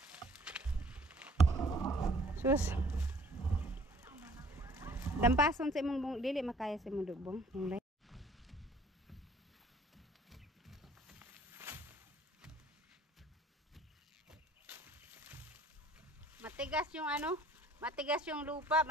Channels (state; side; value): normal; both; correlation 0.56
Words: Sus. Dampason sa imong bung dili makaya sa imong dubong. Matigas yung ano, matigas yung lupa,